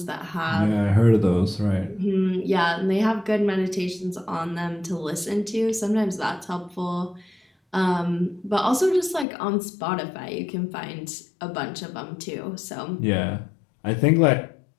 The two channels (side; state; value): right; drops out; at 9.2 s